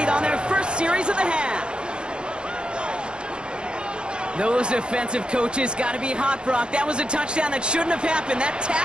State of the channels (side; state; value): left; late; 0.052 ms